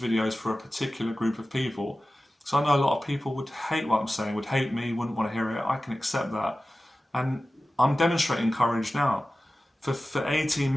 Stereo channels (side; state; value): both; normal; correlation 0.95